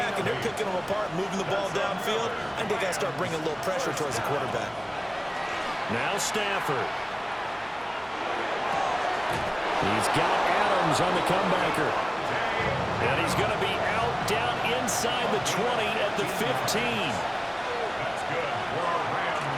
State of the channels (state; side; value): identical; both; correlation 1.00